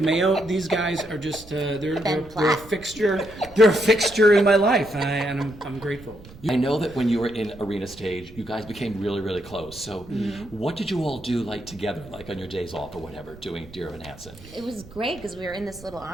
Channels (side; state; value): right; noise; rumble, 19 dB below the sound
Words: Mayo. These guys are just they're a fixture. They're a fixture in my life, and I'm grateful. I know that when you were in Arena Stage, you guys became really, really close. So what did you all do together, on your days off or whatever, doing Dear Evan Hansen? It was great because we were in this little